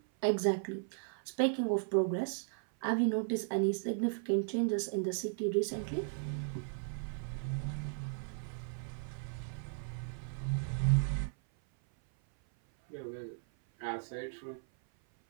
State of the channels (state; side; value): silent; left; 54 dB below the other